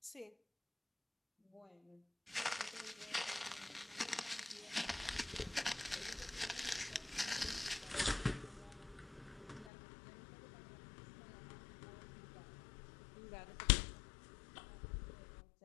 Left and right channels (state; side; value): drops out; right; at 9.7 s